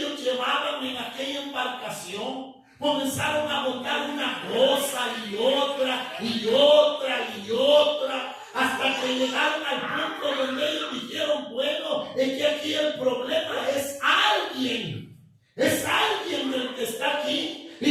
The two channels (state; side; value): identical; both; correlation 1.00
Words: llevaban en aquella embarcación. Comenzaron a botar una cosa y otra y otra y otra, hasta que llegaron al punto donde ellos dijeron, bueno, es que aquí el problema es alguien el que está aquí.